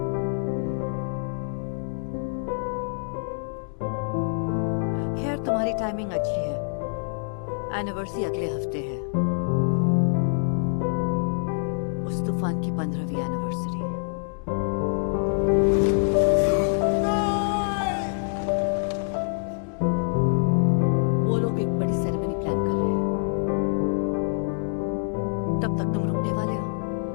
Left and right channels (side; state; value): right; silent; digital silence